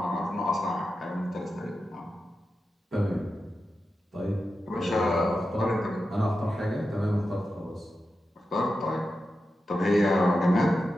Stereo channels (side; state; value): both; normal; correlation 0.91